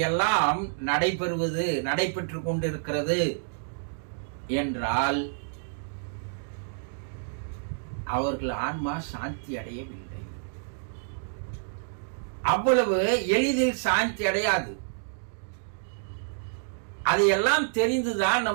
நடைபெற்று கொண்டிருக்கிறது என்றால் அவர்கள் ஆன்மா சாந்தி அடையவில்லை. அவ்வளவு எளிதில் சாந்தி அடையாது. அதையெல்லாம் தெரிந்துதான்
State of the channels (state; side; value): silent; left; digital silence